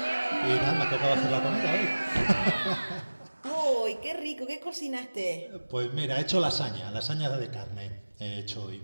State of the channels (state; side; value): inverted; both; correlation -1.00